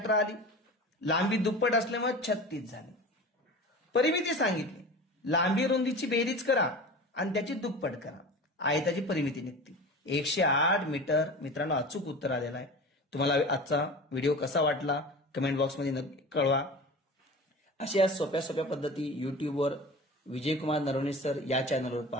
आली। लांबी दुप्पट असल्यामुळे 36 झाली। परिमिती सांगितली, लांबी रुंदीची बेरीज करा आणि त्याची दुप्पट करा, आयताची परिमिती निघते 108 मीटर। मित्रांनो, अचूक उत्तर आलेलं आहे। तुम्हाला आजचा व्हिडिओ कसा वाटला कमेंट बॉक्समध्ये नक्की कळवा। अशा सोप्या सोप्या पद्धती युट्यूबवर विजयकुमार नरवणे सर या चॅनलवर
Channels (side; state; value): both; normal; correlation 0.34